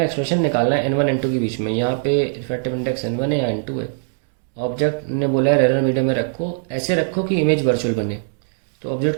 expression निकालना है n1 n2 के बीच में. यहाँ पे रिफ्रैक्टिव इंडेक्स n1 है या n2 है. ऑब्जेक्ट ने बोला है रेयर मीडियम में रखो, ऐसे रखो कि इमेज वर्चुअल बने. तो ऑब्जेक्ट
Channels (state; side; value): silent; left; digital silence